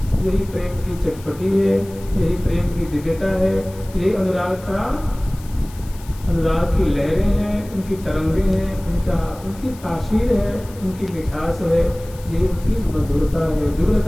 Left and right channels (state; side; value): noise; left; hiss, 21 dB below the sound